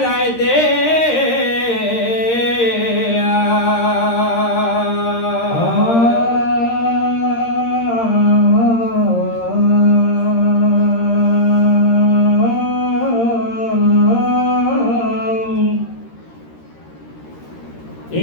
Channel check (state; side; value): late; right; 13 ms